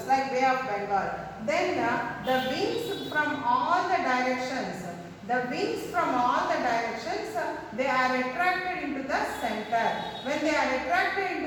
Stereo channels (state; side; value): identical; both; correlation 1.00